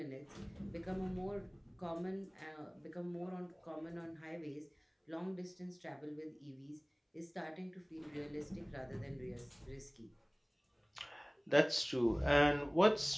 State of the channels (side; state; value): both; identical; correlation 1.00